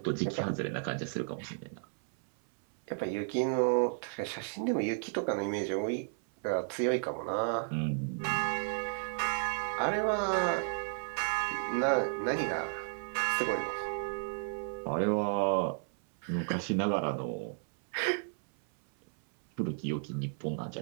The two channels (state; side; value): silent; left; 56 dB below the other